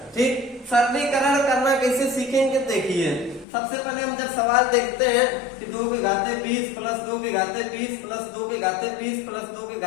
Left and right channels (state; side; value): drops out; right; at 3.5 s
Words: ठीक, सरलीकरण करना कैसे सीखेंगे, देखिए सबसे पहले हम जब सवाल देखते हैं कि 2 के घाते 20 प्लस 2 के घाते 20 प्लस 2 के घाते 20 प्लस 2 के